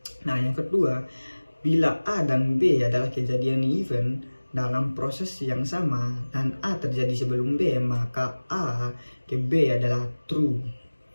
Nah, yang kedua, bila A dan B adalah kejadian event dalam proses yang sama dan A terjadi sebelum B, maka A ke B adalah true.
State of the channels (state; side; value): inverted; both; correlation -1.00